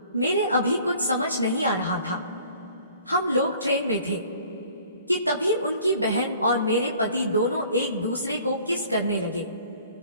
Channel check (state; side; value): inverted; both; correlation -0.52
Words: मेरे अभी कुछ समझ नहीं आ रहा था। हम लोग ट्रेन में थे कि तभी उनकी बहन और मेरे पति दोनों एक दूसरे को किस करने लगे।